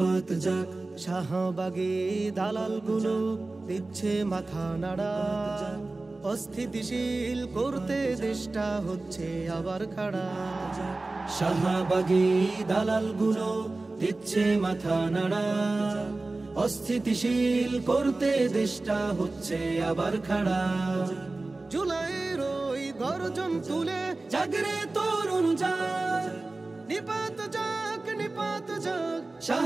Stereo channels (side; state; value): left; quieter; 3.2 dB